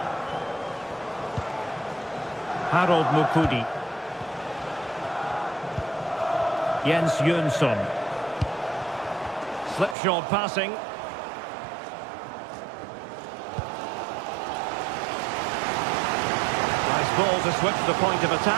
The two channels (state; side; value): drops out; left; at 10.0 s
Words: Harold Mukudi. Jens Jönsson. Slipshod passing. Ball to switch the point of